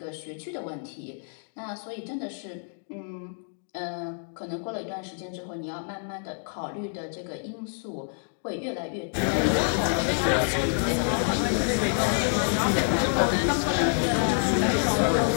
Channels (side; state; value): right; silent; 60 dB below the other